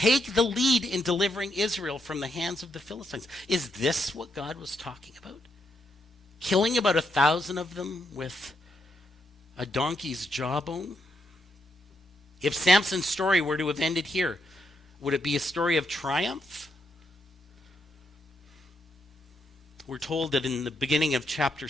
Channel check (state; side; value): normal; both; correlation 0.79